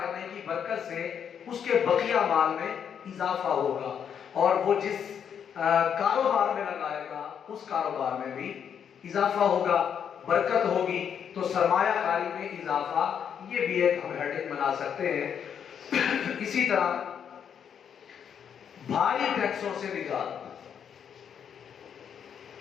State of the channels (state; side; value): quieter; right; 8.0 dB